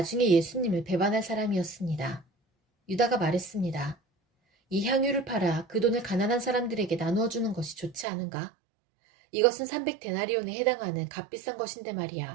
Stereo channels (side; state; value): left; drops out; at 8.1 s